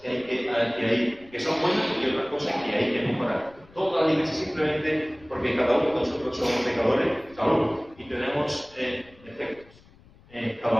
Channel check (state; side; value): noise; left; rumble, 26 dB below the sound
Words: que son buenas y otras cosas que hay que mejorar. Todas las iglesias simplemente porque cada uno de nosotros somos pecadores, y tenemos defectos.